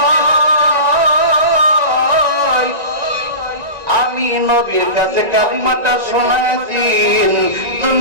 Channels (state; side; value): late; left; 1.9 ms